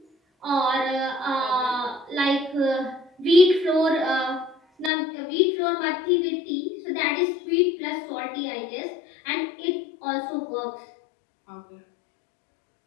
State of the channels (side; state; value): right; drops out; at 4.9 s